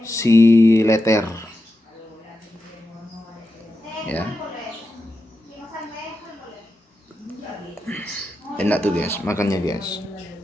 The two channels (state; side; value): normal; both; correlation 0.89